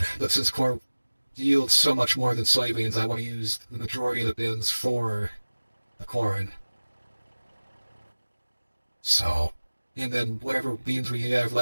But since corn yields so much more than soybeans, I want to use the majority of the bins for the corn. So, and then whatever beans we have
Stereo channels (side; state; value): both; inverted; correlation -1.00